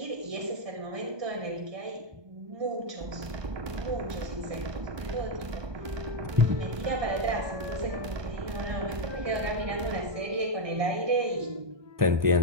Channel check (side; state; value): left; late; 1.2 ms